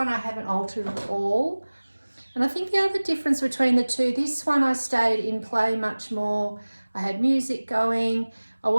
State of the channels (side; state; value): both; inverted; correlation -1.00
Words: I haven't altered at all. And I think the other difference between the two, this one I stayed in play much more. I had music going. I